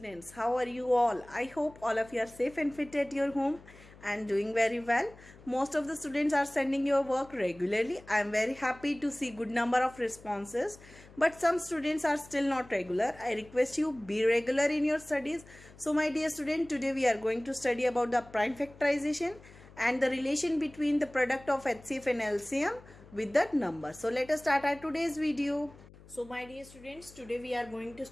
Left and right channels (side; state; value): left; noise; hum, 22 dB below the sound